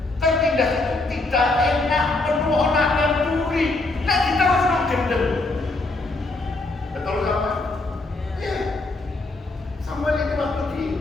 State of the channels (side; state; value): right; quieter; 3.1 dB